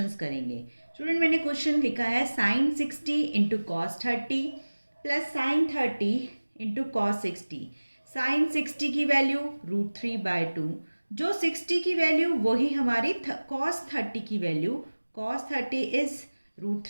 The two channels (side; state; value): both; inverted; correlation -1.00